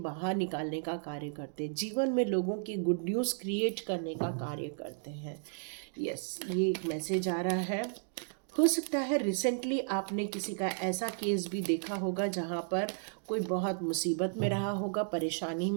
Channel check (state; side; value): silent; left; 55 dB below the other